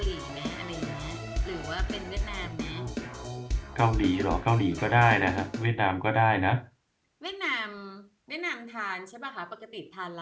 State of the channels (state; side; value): identical; both; correlation 1.00